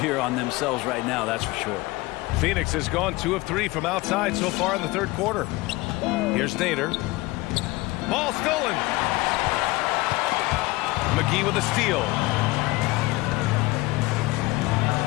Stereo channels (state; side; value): quieter; right; 20.7 dB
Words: on themselves right now, that's for sure. Phoenix has gone 2 of 3 from outside so far in the third quarter. Here's Nader. Ball stolen. McGee with a steal.